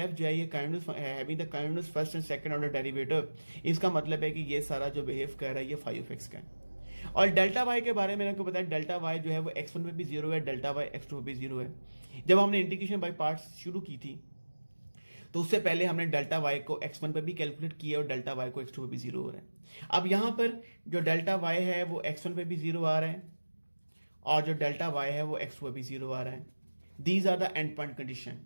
जो है ये having the kindness first and second order derivative, इसका मतलब है कि ये सारा जो बिहेव कर रहा है ये फाई ऑफ एक्स का है। और डेल्टा वाई के बारे में आपको बताया, डेल्टा वाई जो है वो x1 पे भी 0 है, डेल्टा वाई x2 पे भी 0 है। जब हमने इंटीग्रेशन बाय पार्ट्स शुरू की थी तो उससे पहले हमने डेल्टा वाई को x1 पे भी कैलकुलेट किया और डेल्टा वाई को x2 पे भी 0 हो रहा है। अब यहां पर जो डेल्टा वाई है वो x1 पे भी 0 आ रहा है और जो डेल्टा वाई है वो x2 पे भी 0 आ रहा है। These are the end point condition.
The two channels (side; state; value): both; inverted; correlation -1.00